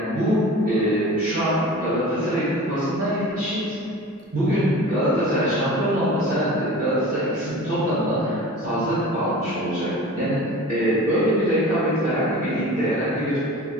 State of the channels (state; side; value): normal; both; correlation 0.38